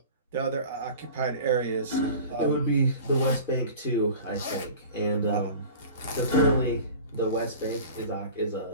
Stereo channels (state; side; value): inverted; both; correlation -0.39